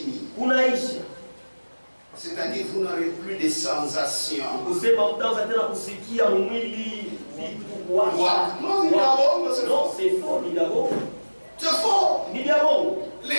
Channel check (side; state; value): both; inverted; correlation -1.00